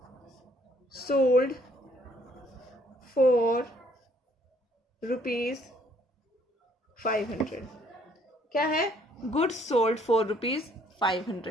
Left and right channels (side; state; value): both; normal; correlation 0.64